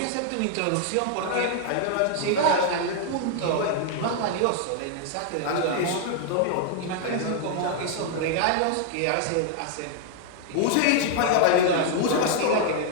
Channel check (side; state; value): both; different; correlation 0.00